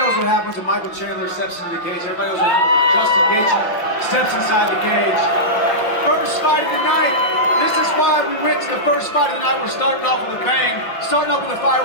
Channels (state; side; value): late; right; 5.8 ms